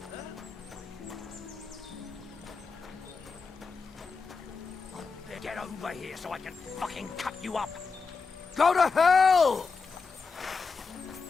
Get over here so I can fucking cut you up. Go to hell!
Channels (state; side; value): quieter; right; 4.8 dB